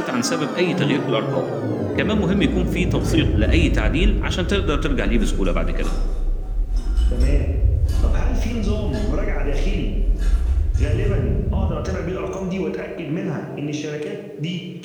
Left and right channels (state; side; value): identical; both; correlation 1.00